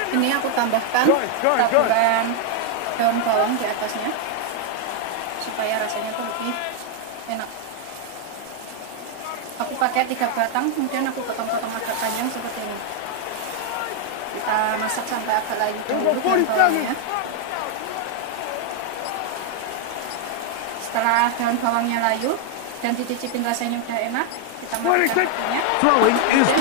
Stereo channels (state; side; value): different; both; correlation 0.00